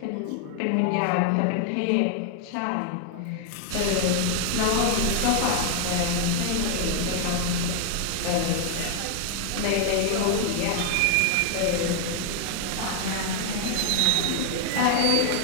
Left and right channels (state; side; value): different; both; correlation 0.00